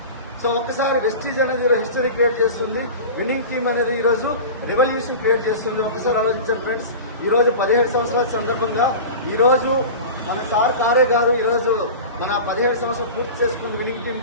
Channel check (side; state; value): both; inverted; correlation -0.32